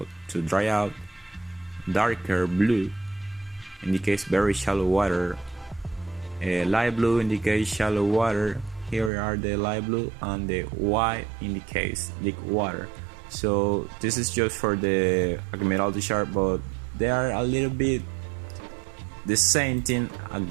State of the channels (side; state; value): left; drops out; at 9.1 s